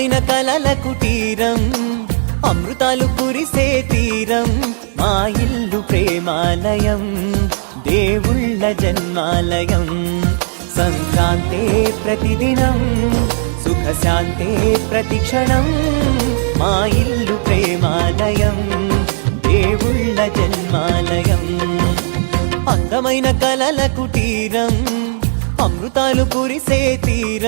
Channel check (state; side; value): silent; left; digital silence